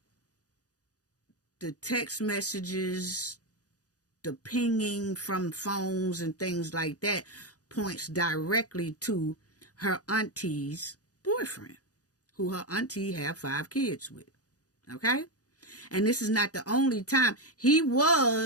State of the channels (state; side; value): late; right; 0.67 ms